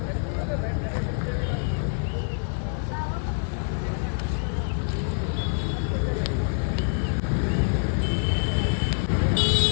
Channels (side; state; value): right; silent; digital silence